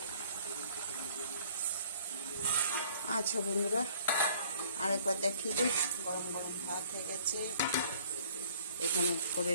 আচ্ছা বন্ধুরা, আরেকবার দেখিয়ে দিই। গরম গরম ভাত হয়ে গেছে, এখানে করে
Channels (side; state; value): both; inverted; correlation -0.56